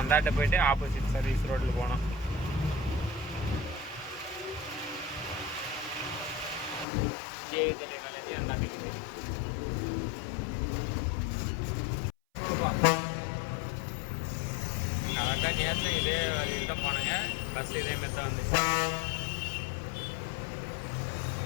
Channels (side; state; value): right; drops out; at 6.9 s